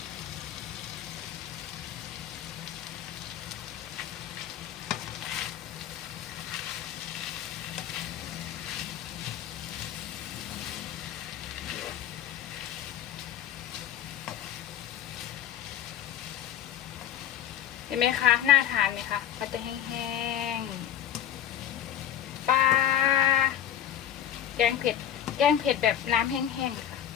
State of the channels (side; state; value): right; quieter; 10.7 dB